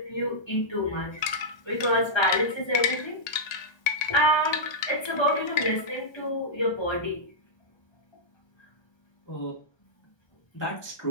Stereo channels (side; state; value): right; late; 1.2 ms